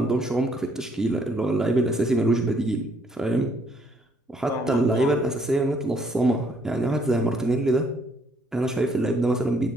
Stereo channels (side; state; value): both; normal; correlation 0.67